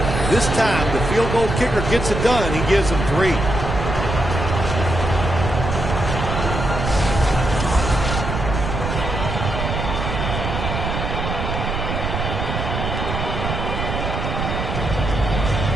This time, the field goal kicker gets it done. He gives them 3.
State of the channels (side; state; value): right; noise; rumble, 3 dB below the sound